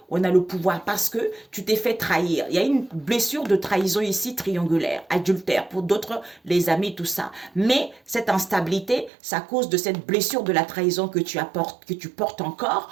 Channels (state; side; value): drops out; left; at 9.1 s